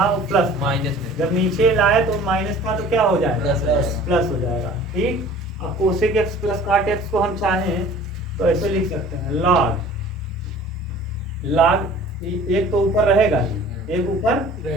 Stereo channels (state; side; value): normal; both; correlation 0.46